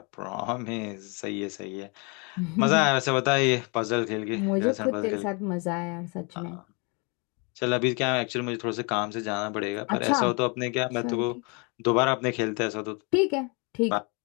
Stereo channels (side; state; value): right; quieter; 32.5 dB